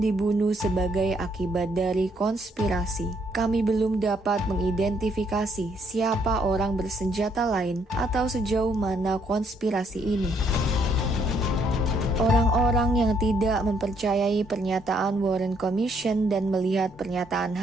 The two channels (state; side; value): normal; both; correlation 0.70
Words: dibunuh sebagai akibat dari konspirasi. Kami belum dapat mengidentifikasi siapa orang bersenjata lain atau sejauh mana konspirasi ini." Orang-orang yang tidak mempercayai pernyataan Warren Commission dan melihat pernyataan